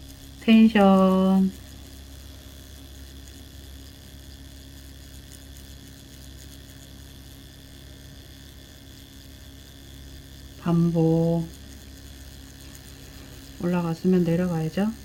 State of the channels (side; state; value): both; identical; correlation 1.00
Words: 텐션 반복. 올라갔으면 내려가야죠.